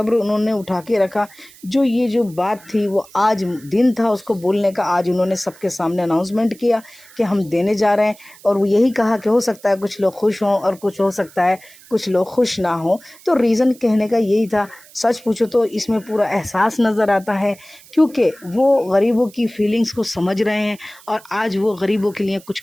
उन्होंने उठा के रखा। जो बात थी वो आज दिन था उसको बोलने का, आज उन्होंने सबके सामने अनाउंसमेंट किया कि हम देने जा रहे हैं। और वो यही कहा कि हो सकता है कुछ लोग खुश हों और कुछ हो सकता है कुछ लोग खुश ना हों। तो रीज़न कहने का यही था। सच पूछो तो इसमें पूरा एहसास नज़र आता है, क्योंकि वो गरीबों की फीलिंग्स को समझ रहे हैं और आज वो गरीबों के लिए कुछ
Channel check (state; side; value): noise; right; hiss, 23 dB below the sound